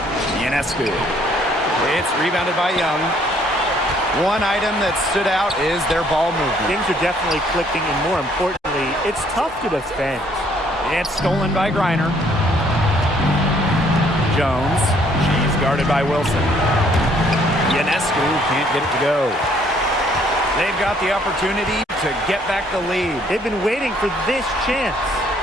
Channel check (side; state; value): both; normal; correlation 0.64